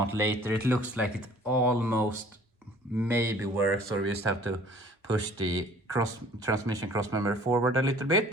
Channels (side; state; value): both; normal; correlation 0.52